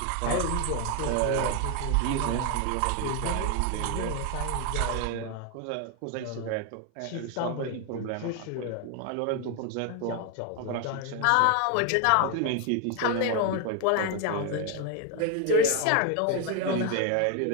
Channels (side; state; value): both; different; correlation 0.01